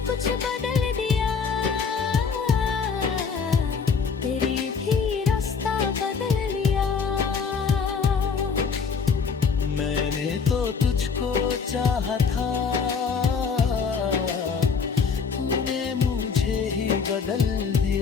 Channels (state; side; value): quieter; right; 5.7 dB